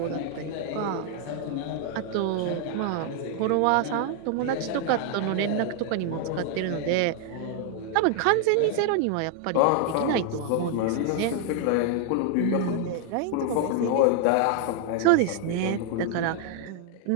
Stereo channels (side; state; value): both; different; correlation 0.00